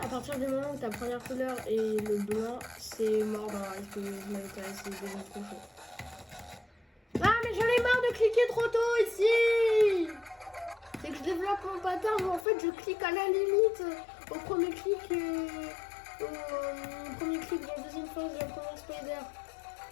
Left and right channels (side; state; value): right; drops out; at 12.5 s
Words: partir du moment où ta première couleur est le blanc, c'est mort dans SPS Military, c'est devenu trop chaud. Ah, mais j'en ai marre de cliquer trop tôt ici! C'est que je développe mon pattern où en fait je clique à la limite au premier clic dans la deuxième phase de la première spider.